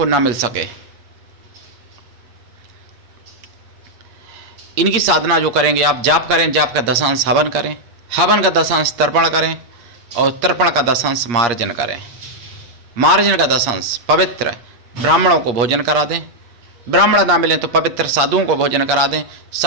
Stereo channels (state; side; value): late; left; 8.4 ms